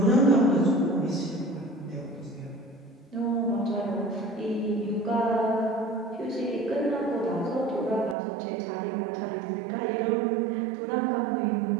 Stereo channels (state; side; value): drops out; left; at 8.2 s